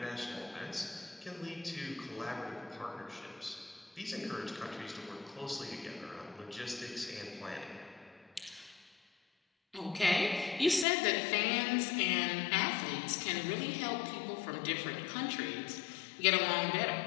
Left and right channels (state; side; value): drops out; right; at 10.9 s